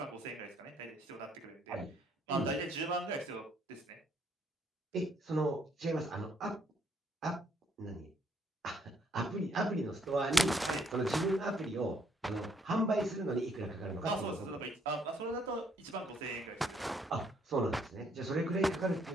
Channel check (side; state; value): both; normal; correlation 0.68